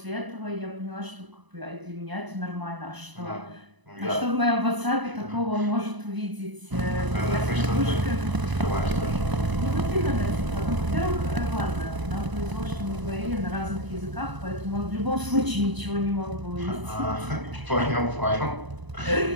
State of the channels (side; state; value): left; late; 1.0 ms